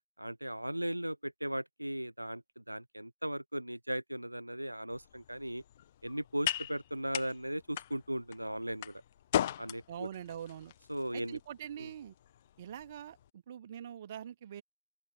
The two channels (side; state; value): both; inverted; correlation -0.83